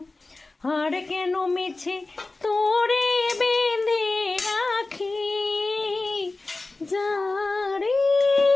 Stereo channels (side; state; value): right; quieter; 3.3 dB